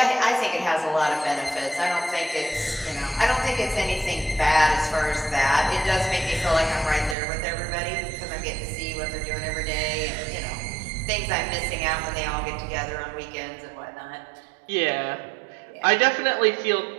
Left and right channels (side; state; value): left; drops out; at 7.2 s